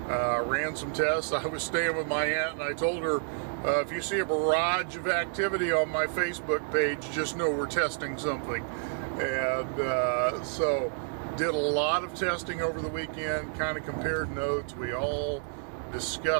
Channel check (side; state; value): left; silent; 58 dB below the other